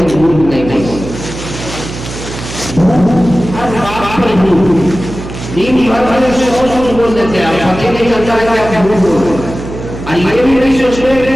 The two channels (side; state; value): right; noise; hum, 10 dB below the sound